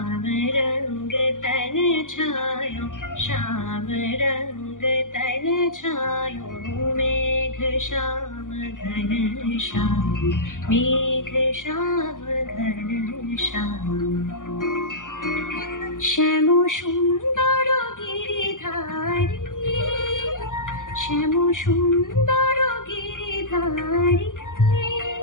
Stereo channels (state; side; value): late; right; 0.88 ms